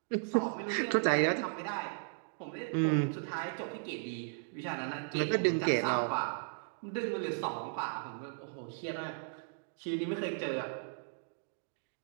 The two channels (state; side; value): silent; left; 54 dB below the other